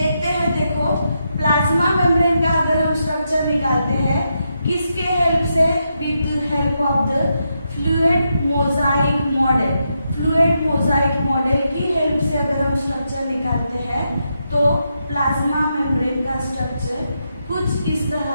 हैं, देखो प्लाज्मा मेम्ब्रेन का अगर हम स्ट्रक्चर निकालते हैं, किसके हेल्प से? With help of the fluid mosaic model. Fluid mosaic model की हेल्प से अगर हम स्ट्रक्चर निकालते हैं तो प्लाज्मा मेम्ब्रेन का स्ट्रक्चर कुछ इस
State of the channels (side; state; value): both; inverted; correlation -0.83